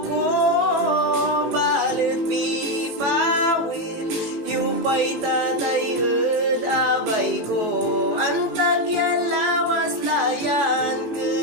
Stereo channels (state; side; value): late; left; 18 ms